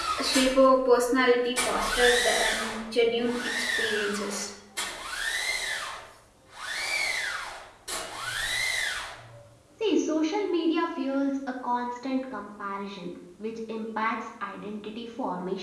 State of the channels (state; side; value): identical; both; correlation 1.00